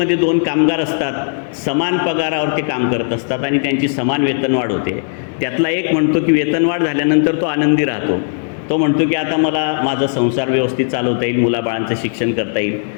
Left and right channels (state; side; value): silent; right; digital silence